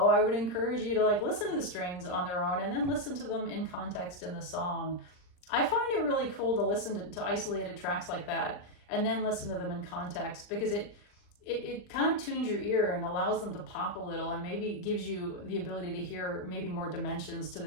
I would encourage you to like listen to the strings on their own and then listen to them in context in the song. I find it really cool to listen to isolated tracks like that and then listen to them in context, because it kind of tunes your ear and allows them to pop a little, and maybe gives you the ability to hear maybe more dimensions to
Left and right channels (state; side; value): late; right; 39 ms